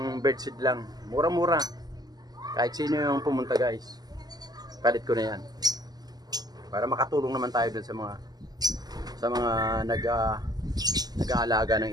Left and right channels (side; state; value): left; late; 0.19 ms